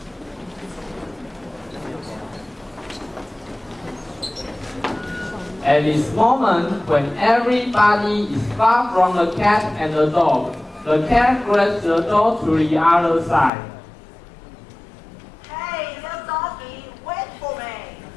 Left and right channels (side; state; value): right; drops out; at 13.5 s